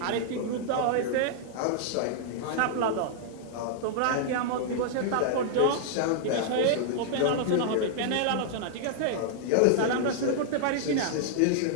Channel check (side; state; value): both; different; correlation -0.01